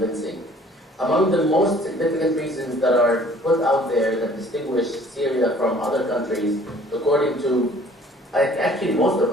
Among the most significant reasons that are put out there that distinguish Syria from other countries, according to actually most of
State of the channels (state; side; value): normal; both; correlation 0.54